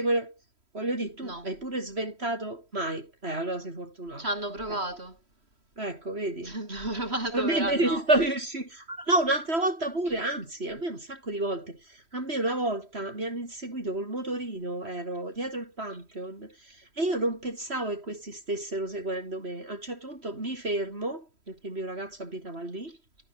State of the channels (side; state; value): left; late; 3.1 ms